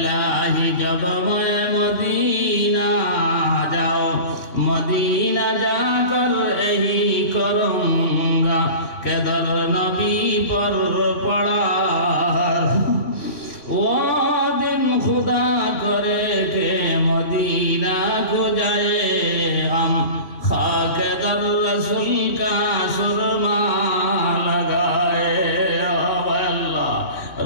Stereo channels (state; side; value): late; right; 3.1 ms